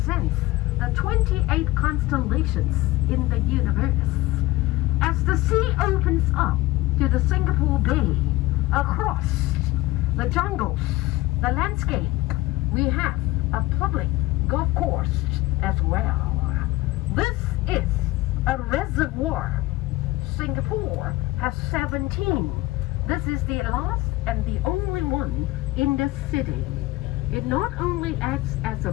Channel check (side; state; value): right; quieter; 18.7 dB